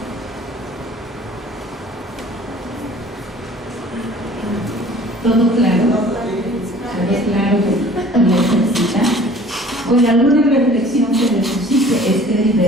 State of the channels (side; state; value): both; normal; correlation 0.49